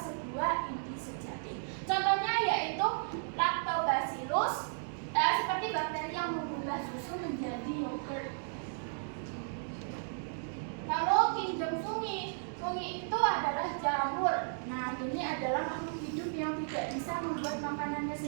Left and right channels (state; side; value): silent; left; digital silence